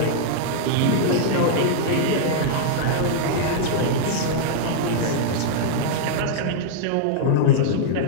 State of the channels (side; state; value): both; different; correlation -0.02